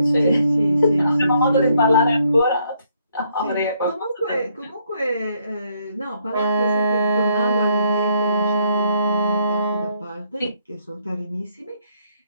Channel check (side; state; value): both; inverted; correlation -0.71